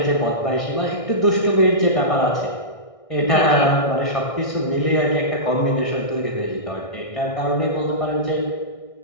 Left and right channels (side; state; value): right; late; 1.6 ms